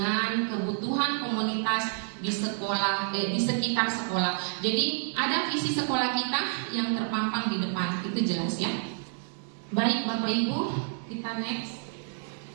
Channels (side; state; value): left; silent; 59 dB below the other